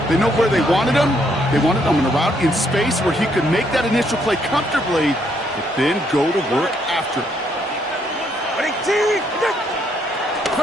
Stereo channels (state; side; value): normal; both; correlation 0.72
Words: They know where they wanted them. They wanted them in a route in space where he could make that initial play comfortably, but then go to work after it.